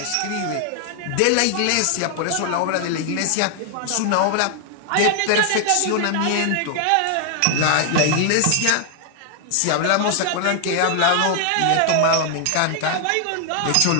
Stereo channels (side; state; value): both; different; correlation 0.00